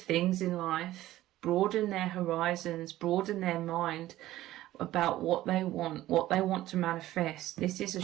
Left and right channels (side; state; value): left; quieter; 15.1 dB